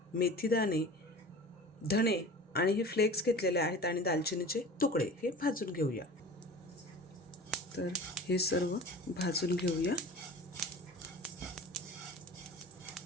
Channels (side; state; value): both; normal; correlation 0.38